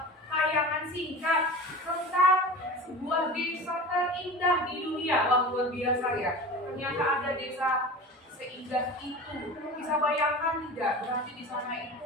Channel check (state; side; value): normal; both; correlation 0.35